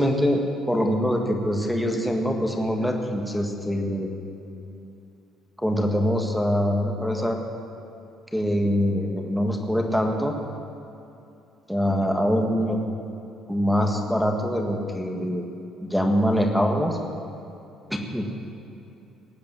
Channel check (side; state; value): both; normal; correlation 0.84